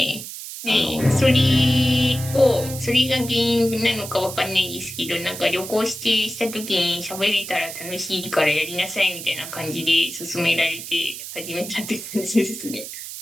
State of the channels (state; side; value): noise; right; hiss, 10 dB below the sound